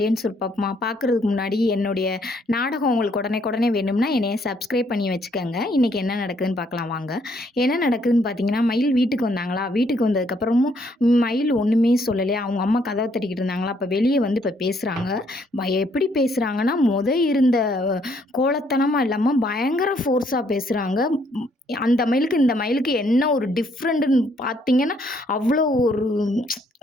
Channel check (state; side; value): normal; both; correlation 0.69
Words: சுருப்பமா பார்க்குறதுக்கு முன்னாடி என்னுடைய நாடகம் உங்களுக்கு உடனே வேணும்னா என்னைய சப்ஸ்கிரைப் பண்ணி வச்சுக்கோங்க. இன்றைக்கி என்ன நடக்குதுன்னு பார்க்கலாம் வாங்க. என்ன நடக்குதுன்னு பார்த்தீங்கன்னா, மயில் வீட்டுக்கு வந்தாங்களா, வீட்டுக்கு வந்ததுக்கப்புறமும் மயில் ஒன்றுமே சொல்லலையா, அவங்க அம்மா கதவை தட்டிக்கிட்டு இருந்தாங்களா, அப்போ வெளியே வந்து இப்போ பேசுகிறாங்க. எப்படி பேசுகிறாங்கன்னா, இருந்த கோலத்தனமாக இல்லாமல் பயங்கர ஃபோர்ஸாக பேசுகிறாங்க. அந்த மயிலுக்கு இந்த மயிலுக்கு என்ன ஒரு டிஃப்ரெண்ட்டுன்னு பார்த்தீங்கன்னா, அவ்வளோ ஒரு